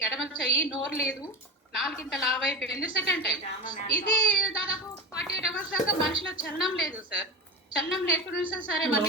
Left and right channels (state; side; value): normal; both; correlation 0.25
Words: ఎడమ చెయ్యి, నోరు లేదు, నాలుగింత లావైపోయింది సెకండ్ టైం. ఇది దాదాపు 48 hours దాకా మనిషిలో చలనం లేదు సార్. చలనం లేకుండా సరే